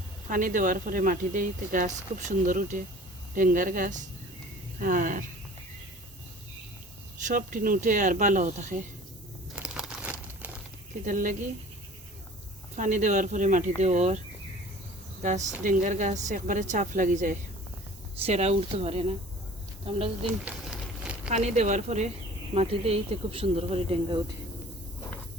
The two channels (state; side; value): normal; both; correlation 0.46